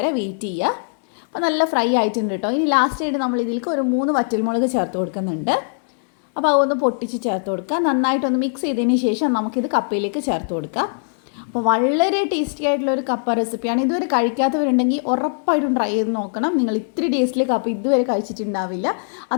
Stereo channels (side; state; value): right; silent; digital silence